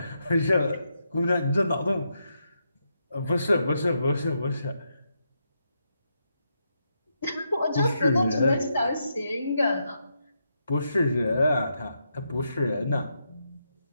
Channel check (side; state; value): both; inverted; correlation -0.82